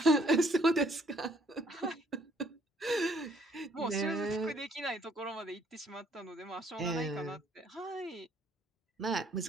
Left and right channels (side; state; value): both; normal; correlation 0.65